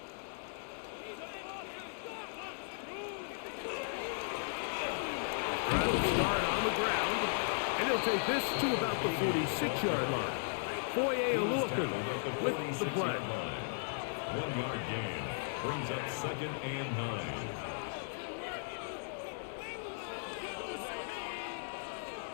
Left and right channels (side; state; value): right; silent; 53 dB below the other